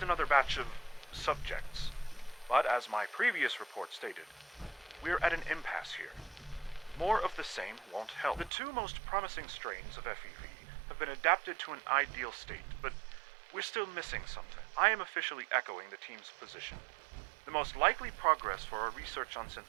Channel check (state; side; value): drops out; left; at 8.5 s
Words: another batch of subjects. But as my previous report stated, we're at an impasse here. More of the same won't help. The two most promising strains of FEV have been adapted to an ideal state, but we're still missing something. I am officially echoing the team's position. The most likely progress for our research on